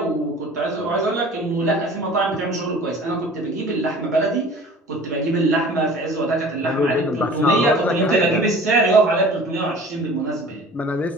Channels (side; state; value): both; normal; correlation 0.44